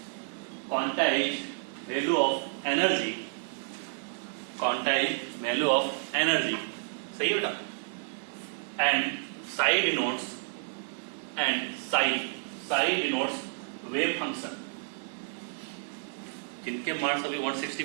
quantized value of energy. Quantized value of energy. सही है बेटा? And psi denotes wave function. जिनके marks अभी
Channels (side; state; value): left; silent; digital silence